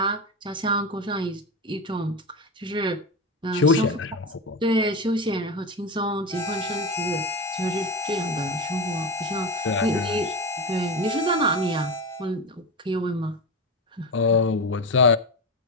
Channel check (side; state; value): both; normal; correlation 0.20